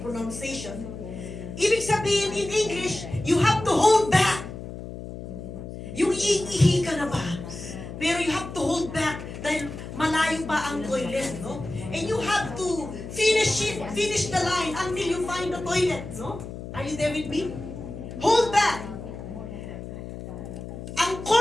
pronunciation. Ibig sabihin in English, you have to hold back. Yung iihi ka na ba? Pero you have to hold back dahil malayo pa ang toilet, no? And you have to finish the line until you find the toilet, no? Are you there with me? Hold back. Ang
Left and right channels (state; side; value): noise; left; hum, 10 dB below the sound